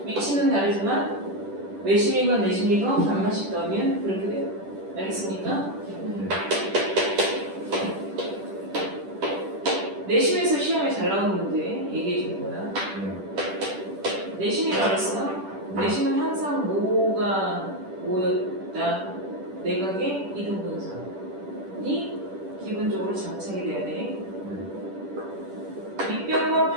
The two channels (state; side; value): late; left; 10 ms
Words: 위치는 다르지만 외심이건 내심이건 반만씩 더하면 그렇게 돼요. 알겠습니까? 내심에서 시험에 잘 나오는 문제 얘기해 준 거야. 내심이라고 했어? 내심은 항상 뭐가 모였다. 내각의 이등분선이 기본적으로 안쪽으로 장착이 돼야 돼. 밑변과